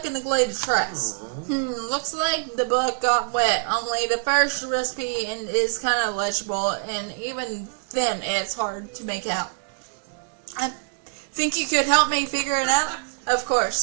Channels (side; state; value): left; silent; digital silence